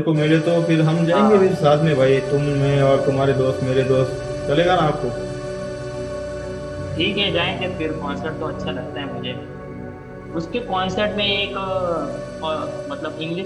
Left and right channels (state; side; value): identical; both; correlation 1.00